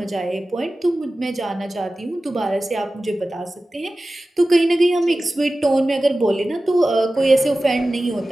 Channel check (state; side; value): normal; both; correlation 0.96